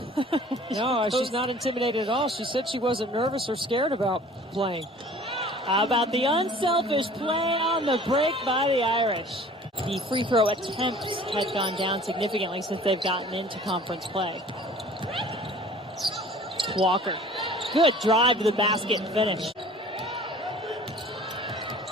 No, she's not intimidated at all. She said she wasn't nervous or scared about playing. How about the unselfish play on the break by the Irish? The free throw attempts had gone down significantly since they've gotten into conference play. Walker. Good drive to the basket and finish.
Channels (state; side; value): normal; both; correlation 0.47